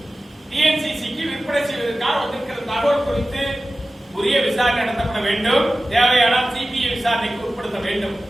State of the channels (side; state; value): both; normal; correlation 0.95